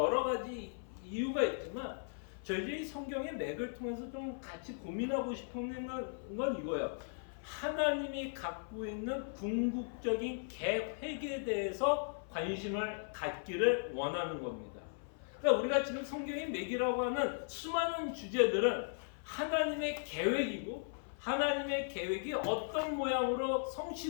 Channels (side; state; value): right; silent; 53 dB below the other